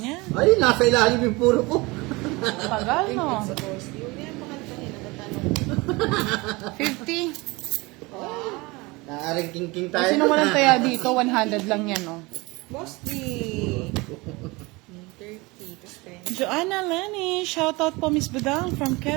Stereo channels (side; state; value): left; quieter; 24.0 dB